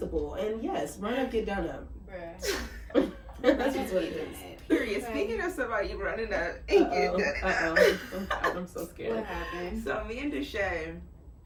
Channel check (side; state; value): both; identical; correlation 1.00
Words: And yes, run up, get done up. Bruh. That's just what it is. period. Right. Speaking of somebody running up and getting done it up. I'm so scared. What happened? So me and Deshae,